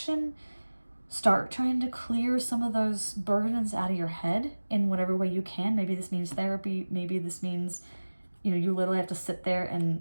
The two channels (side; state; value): both; inverted; correlation -1.00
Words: Start trying to clear some of those burdens out of your head in whatever way you can. Maybe this means therapy. Maybe this means, you literally have to sit there and